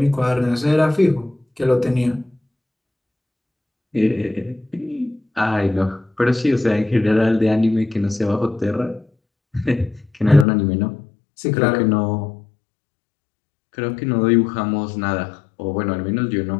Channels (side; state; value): right; drops out; at 10.5 s